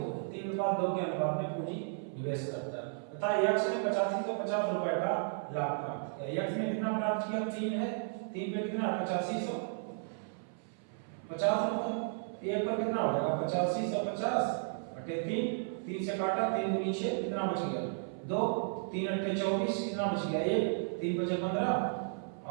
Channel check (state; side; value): silent; left; 55 dB below the other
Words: है, 3:2 के अनुपात में पूंजी निवेश करता है तथा यक्स ने 8550 रुपए का लाभ प्राप्त किया। यक्स ने कितना प्राप्त किया? 3 है, 3 पे कितना? 8550 रुपए। एक पर कितना हो जाएगा? 8550 बटे 3, 3 से काटा, 3 दूनी 6, कितना बच गया? 2, 3 अट्ठे 24, कितना बच गया? 1, 3 बचे 15